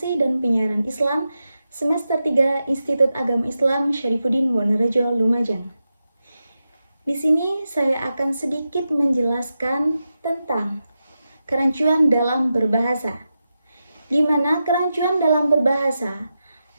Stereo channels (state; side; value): inverted; both; correlation -0.89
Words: dan Penyiaran Islam Semester 3 Institut Agama Islam Syarifuddin Wonorejo, Lumajang. Di sini saya akan sedikit menjelaskan tentang kerancuan dalam berbahasa, di mana kerancuan dalam berbahasa